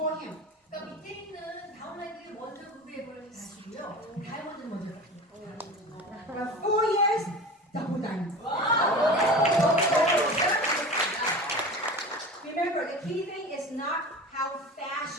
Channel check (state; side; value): normal; both; correlation 0.33